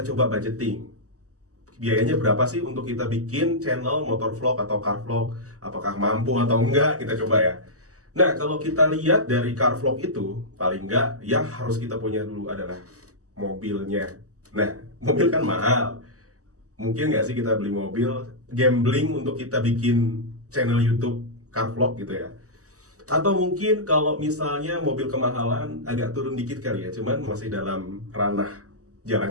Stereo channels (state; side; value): late; left; 0.66 ms